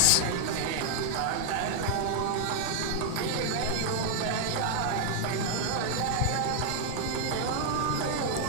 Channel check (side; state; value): both; different; correlation 0.00